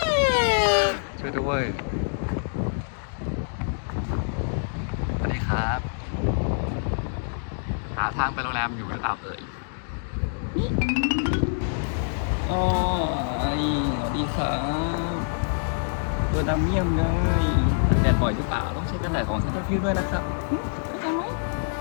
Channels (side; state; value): right; silent; digital silence